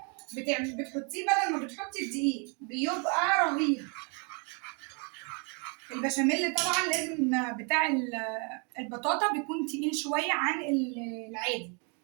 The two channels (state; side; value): quieter; left; 35.5 dB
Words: بتحطيه بدل ما بتحطي الدقيق، بيبقى رهيب. البشاميل طبعا لازم بتاع البطاطا بيكون تقيل شويه عن العادي،